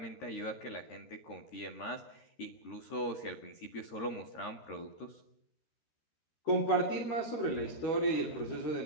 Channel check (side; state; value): right; late; 13 ms